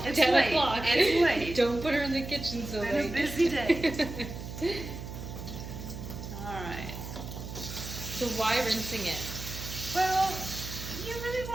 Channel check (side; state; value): right; noise; hum, 9 dB below the sound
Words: It's 10 late. o'clock. It's late. Don't put her in the kitchen so It's been a late. busy day. Alright. So why rinsing it? Well, you really